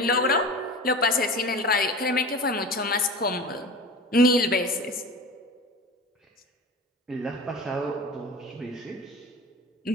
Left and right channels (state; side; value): normal; both; correlation 0.33